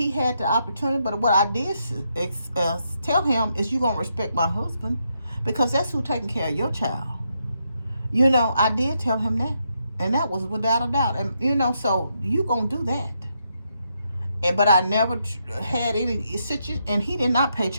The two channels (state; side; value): inverted; both; correlation -0.80